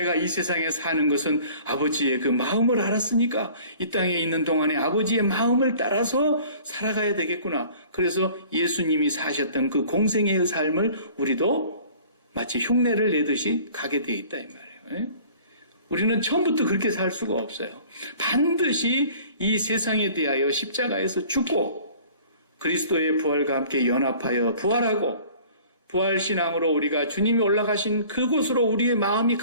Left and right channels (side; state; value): both; inverted; correlation -0.49